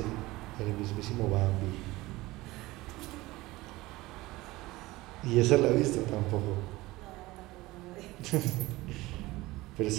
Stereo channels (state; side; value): quieter; left; 19.6 dB